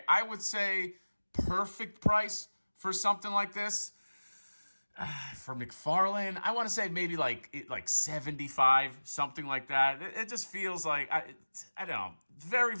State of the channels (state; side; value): inverted; both; correlation -1.00